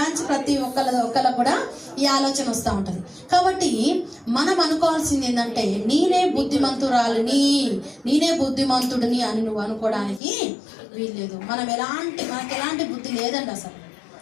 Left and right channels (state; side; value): drops out; right; at 10.2 s